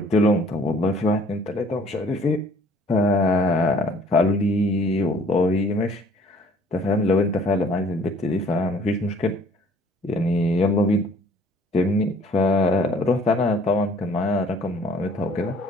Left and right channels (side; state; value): both; normal; correlation 0.57